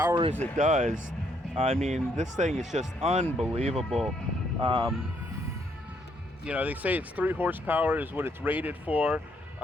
as it does, I mean, this thing is just unbelievable. You know, they say it's 3 horsepower is what it's rated for.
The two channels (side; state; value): both; normal; correlation 0.72